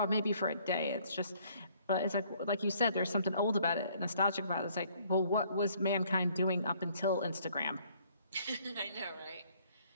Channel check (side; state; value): both; inverted; correlation -0.62